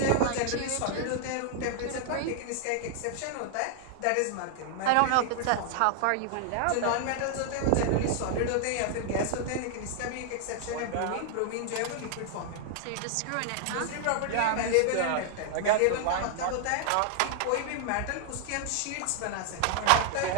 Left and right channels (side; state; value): both; different; correlation 0.00